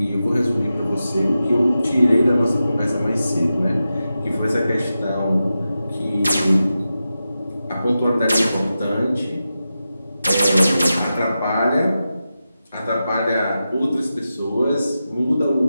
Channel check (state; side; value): inverted; both; correlation -0.91